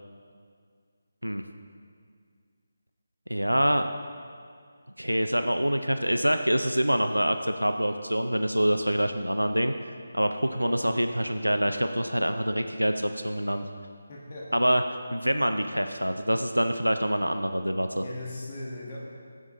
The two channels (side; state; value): both; inverted; correlation -0.98